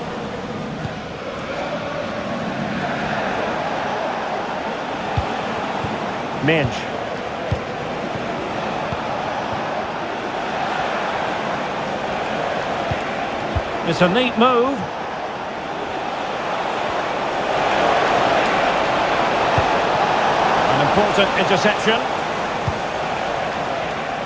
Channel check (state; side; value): identical; both; correlation 1.00